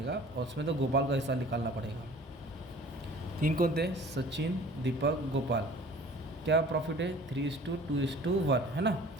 और उसमें तो गोपाल का हिस्सा निकालना पड़ेगा। 3 कौन थे, सचिन, दीपक, गोपाल, क्या प्रॉफिट है 3:2:1, है ना।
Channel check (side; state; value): both; normal; correlation 0.47